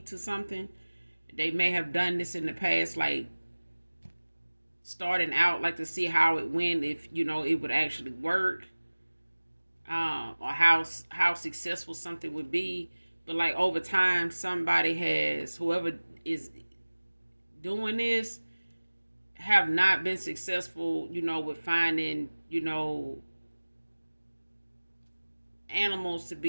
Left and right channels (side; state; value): both; inverted; correlation -1.00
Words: to something. They may have done this in the past, like starting out, like to see how it went, if it would actually work, or how successful something would be. But like over time, whoever is doing this have not been successful, with finding, animals to